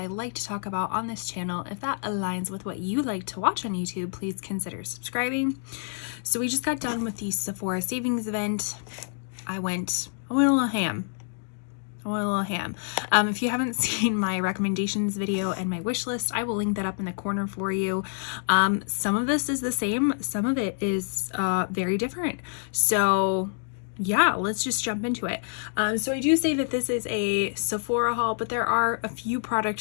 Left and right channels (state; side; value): silent; right; digital silence